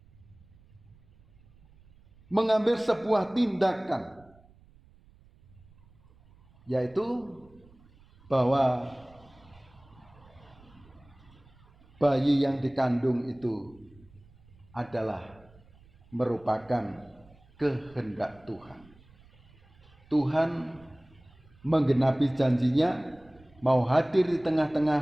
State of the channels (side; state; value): right; noise; rumble, 27 dB below the sound